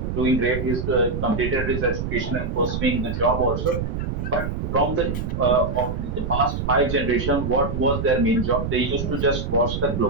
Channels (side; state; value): right; noise; rumble, 3 dB below the sound